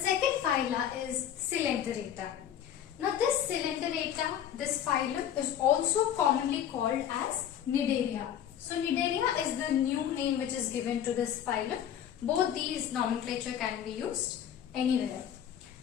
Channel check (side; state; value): right; quieter; 9.9 dB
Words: phyla is Coelenterata. Now this Coelenterata, this phylum is also commonly called as Cnidaria. So Cnidaria is the new name which is given to this phylum. Both these nomenclature can be used anywhere.